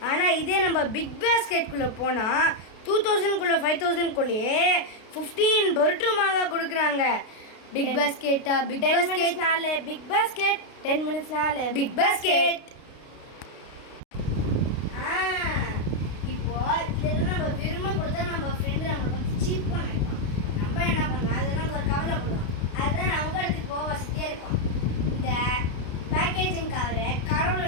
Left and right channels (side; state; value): right; late; 33 ms